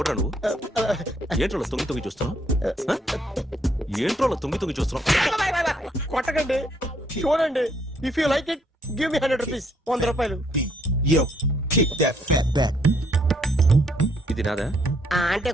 నువ్వు? ఏంట్రోలో తొంగి చూస్తున్నావు? ఏంట్రోలో తొంగి చూస్తున్నావు? కొట్టకండి, చూడండి. If you like it give me 100 rupees. 100 రూపాయలు. ఇది నాదా? అంటే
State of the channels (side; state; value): both; normal; correlation 0.69